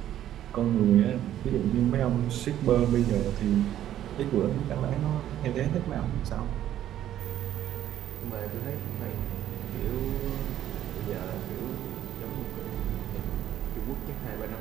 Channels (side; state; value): left; quieter; 11.8 dB